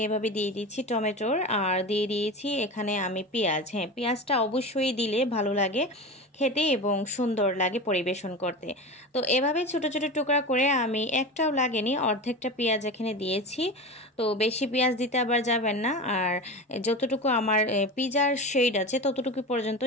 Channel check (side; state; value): both; normal; correlation 0.27